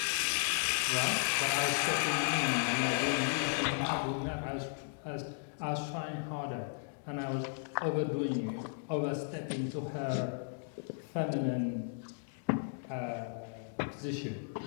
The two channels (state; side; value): silent; right; digital silence